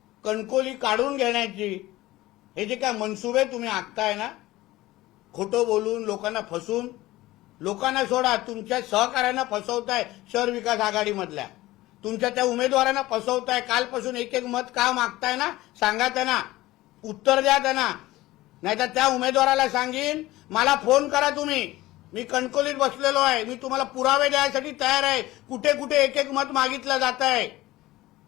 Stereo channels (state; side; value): quieter; right; 17.7 dB